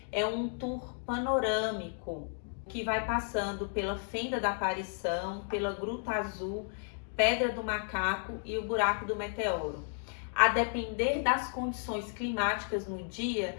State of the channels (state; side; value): silent; right; 56 dB below the other